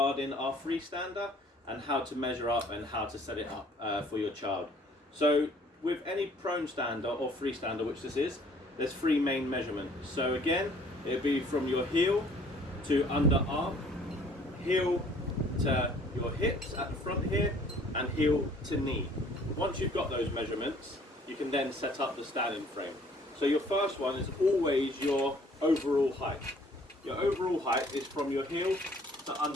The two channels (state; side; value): normal; both; correlation 0.57